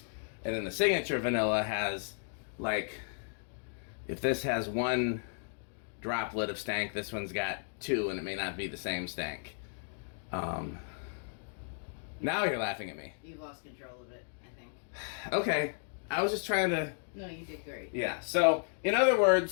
And then the signature vanilla has like, if this has 1 droplet of stank, this one's got 2, and it may not be the same stank. Now you're laughing at me. You've lost control of it, I think. Okay, I was just trying to. No, you did great. Yeah. So, in other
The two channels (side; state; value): right; silent; digital silence